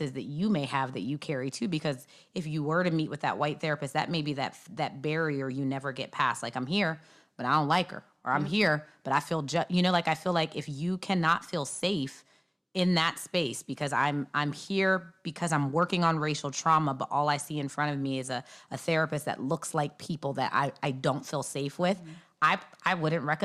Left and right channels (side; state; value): both; identical; correlation 1.00